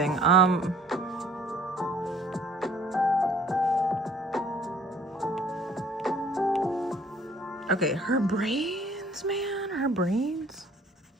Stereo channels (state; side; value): normal; both; correlation 0.56